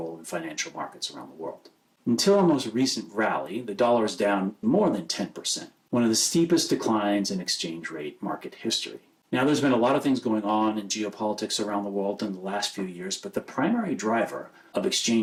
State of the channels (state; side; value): identical; both; correlation 1.00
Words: in financial markets around the world. Until our most recent rally, the dollar is down more than 10%, one of the steepest declines in exchange rate market history. Now, there's been a lot of things going on in geopolitics around the world in the last few years, but the primary driver of